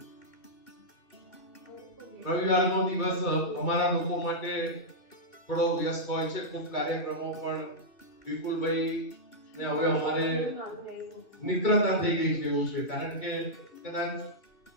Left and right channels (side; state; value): right; late; 2.5 ms